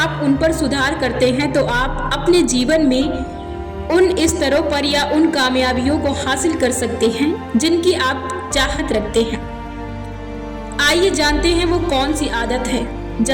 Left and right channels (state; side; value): identical; both; correlation 1.00